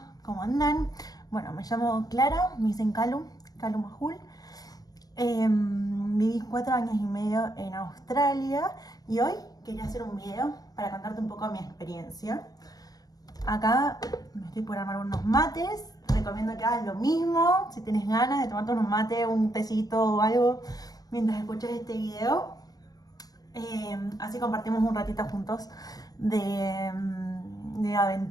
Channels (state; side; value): late; right; 0.18 ms